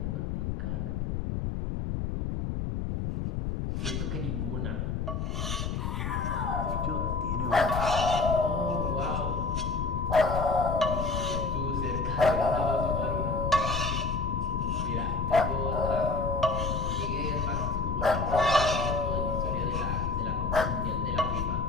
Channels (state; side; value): noise; left; rumble, 2 dB below the sound